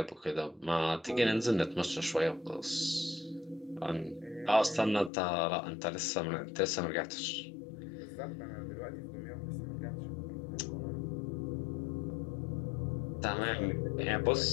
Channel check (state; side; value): drops out; right; at 5.1 s